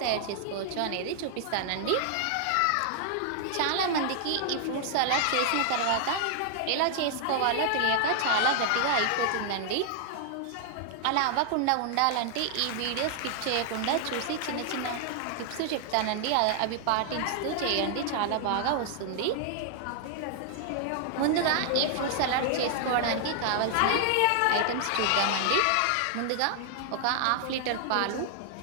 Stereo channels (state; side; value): different; both; correlation -0.01